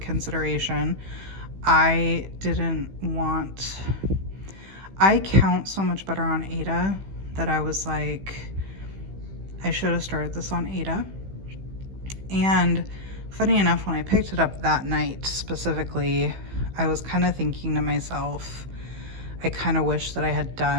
I count so much better on Ada that I was like, I should have started this on Ada. And funny enough, when I picked it up that night specifically, I was kind of thinking to myself, I kind of wish that I had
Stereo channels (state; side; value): late; left; 15 ms